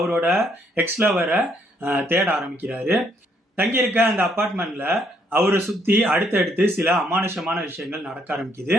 எக்ஸ் லவரை தேட ஆரம்பிக்கிறாரு. தங்கியிருக்க அந்த அப்பார்ட்மெண்ட்ல அவரை சுத்தி அடுத்தடுத்து சில அமானுஷமான விஷயங்கள் நடக்க ஆரம்பிக்குது.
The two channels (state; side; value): normal; both; correlation 0.70